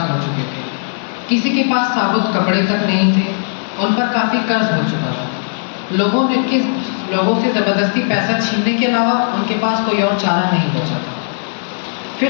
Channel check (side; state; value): right; silent; digital silence